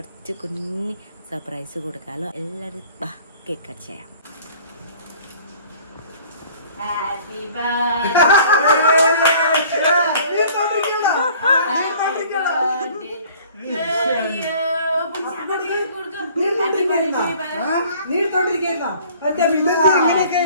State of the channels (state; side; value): inverted; both; correlation -0.52